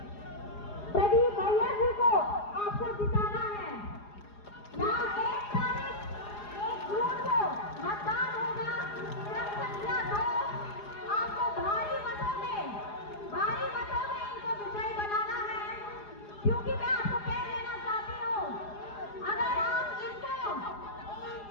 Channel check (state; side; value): late; right; 4.8 ms